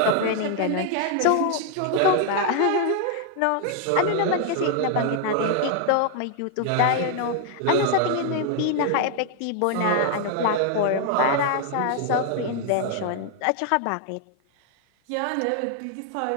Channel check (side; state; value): both; different; correlation 0.00